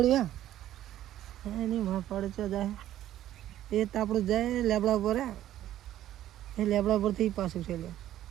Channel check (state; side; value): quieter; left; 12.8 dB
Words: એની પડે ચો જાય એ તાપડું જાય લેબડા પર એ લેબડા પરથી પાછું છે